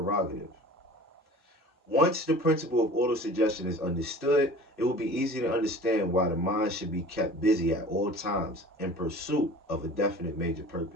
Once the principle of autosuggestion is understood, it will be easy to understand why the mind should be kept busy at all times in pursuit of a definite major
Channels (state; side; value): normal; both; correlation 0.42